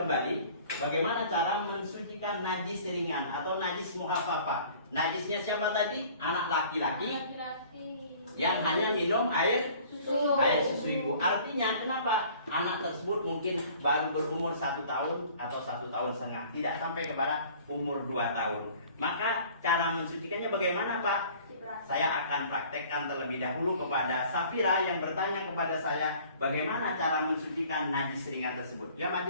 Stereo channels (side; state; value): both; inverted; correlation -0.51